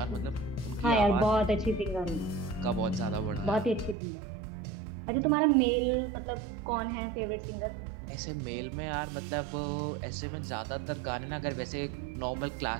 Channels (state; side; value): drops out; left; at 4.0 s